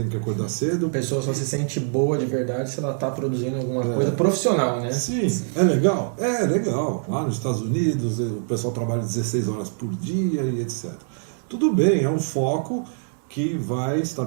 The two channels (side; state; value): left; silent; digital silence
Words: que acordar cedo. A pessoa só se sente boa de verdade se ela está produzindo alguma coisa profissional, né? Sim, é legal? É legal. Lá nos Estados Unidos o pessoal trabalha 16 horas por dia e etc. Tudo bem, é um foco que vai